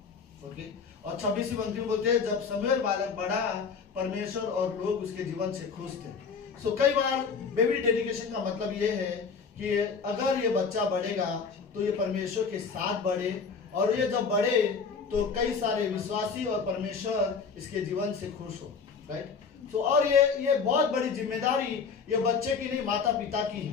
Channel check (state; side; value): quieter; right; 5.5 dB